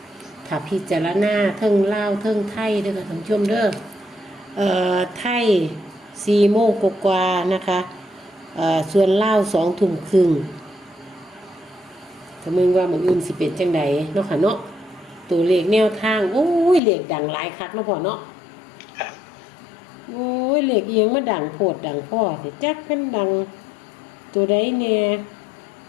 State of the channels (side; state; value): right; drops out; at 16.8 s